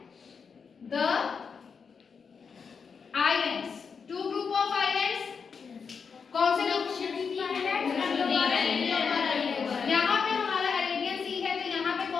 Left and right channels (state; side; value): quieter; right; 5.8 dB